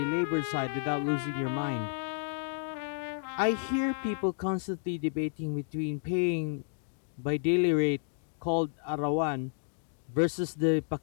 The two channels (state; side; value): silent; right; digital silence